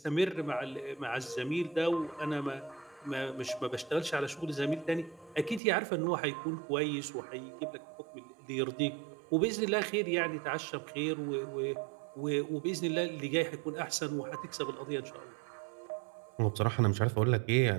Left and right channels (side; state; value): left; drops out; at 5.6 s